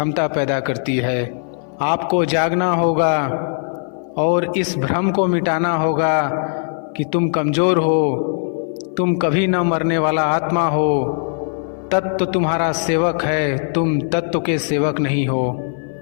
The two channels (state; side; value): silent; right; 58 dB below the other